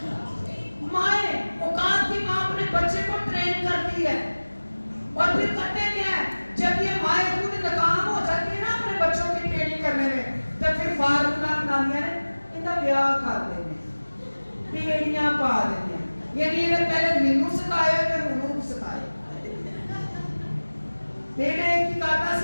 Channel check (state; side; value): inverted; both; correlation -1.00